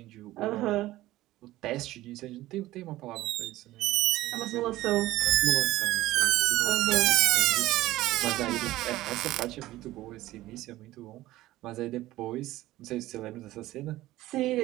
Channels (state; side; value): quieter; left; 16.5 dB